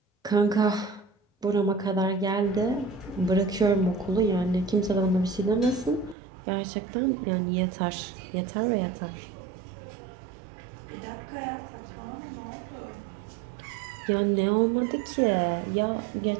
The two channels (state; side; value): drops out; left; at 6.2 s